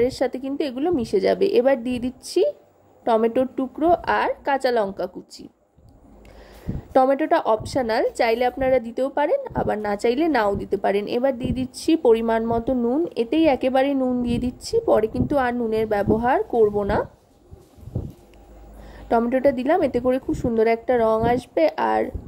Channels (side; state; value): both; identical; correlation 1.00